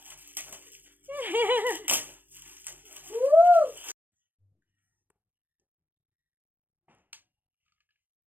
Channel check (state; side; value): late; left; 0.092 ms